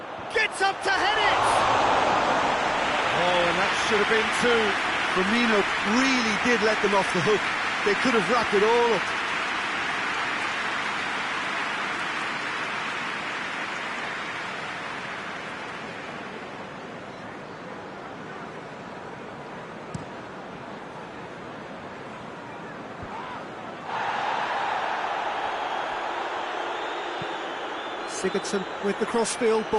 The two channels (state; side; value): identical; both; correlation 1.00